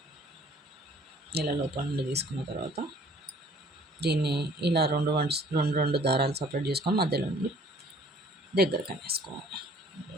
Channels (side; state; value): both; normal; correlation 0.55